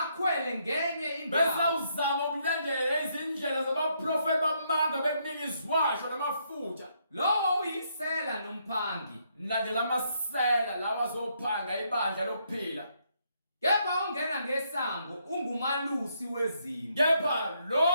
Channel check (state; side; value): inverted; both; correlation -0.74